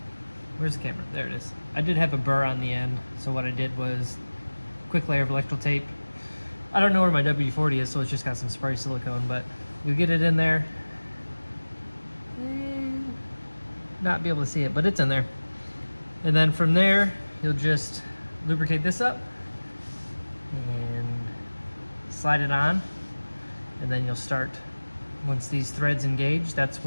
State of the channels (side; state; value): both; inverted; correlation -1.00